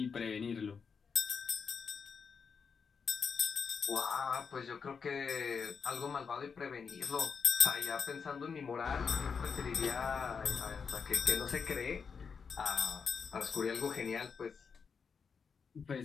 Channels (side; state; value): right; quieter; 5.9 dB